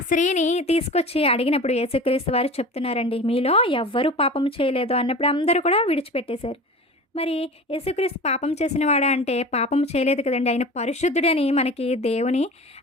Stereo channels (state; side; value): normal; both; correlation 0.35